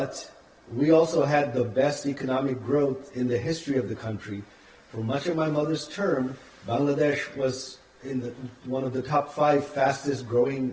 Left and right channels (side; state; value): both; identical; correlation 1.00